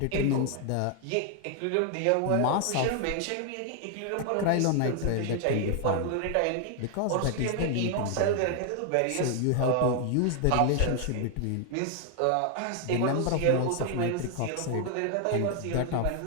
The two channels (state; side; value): different; both; correlation 0.00